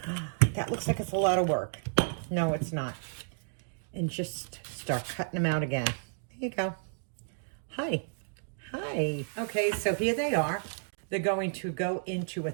oh, that looks like it's a lot of work. No, it's not. And just start cutting them out again. There you go. Hi. Hi. Okay, so here they are. They're going to go into a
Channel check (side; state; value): left; silent; digital silence